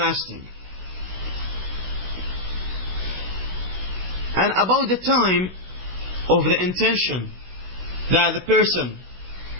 And about the time of the intention that the person,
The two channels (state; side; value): late; left; 16 ms